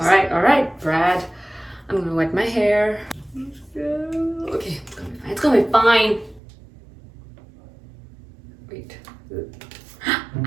right, Brad. I'm gonna wet my hair. Okay, it's gonna be fine. Wait.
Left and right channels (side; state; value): left; drops out; at 6.4 s